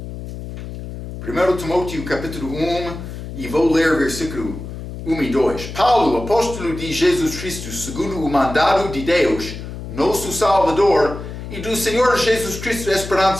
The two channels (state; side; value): noise; left; hum, 10 dB below the sound